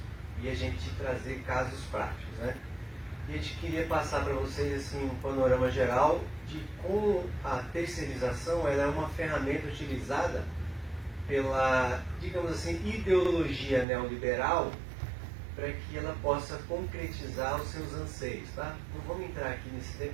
e a gente trazer casos práticos, né? E a gente queria passar para vocês assim, um panorama geral de como a terceirização ela é uma ferramenta utilizada pela, digamos assim, ideologia neoliberal para que ela possa concretizar os seus anseios, tá? Não vamos entrar aqui nesse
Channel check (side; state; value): left; drops out; at 13.9 s